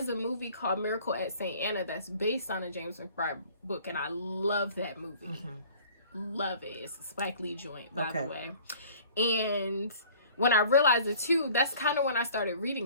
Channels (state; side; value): inverted; both; correlation -0.50